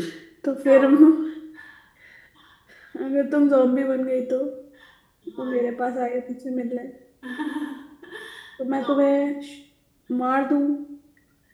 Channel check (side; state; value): both; identical; correlation 1.00